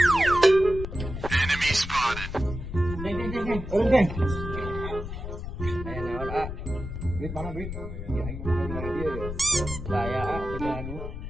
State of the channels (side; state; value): left; noise; rumble, 7 dB below the sound